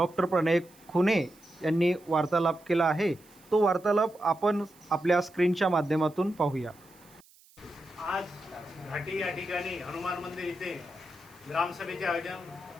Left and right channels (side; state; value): right; noise; hiss, 27 dB below the sound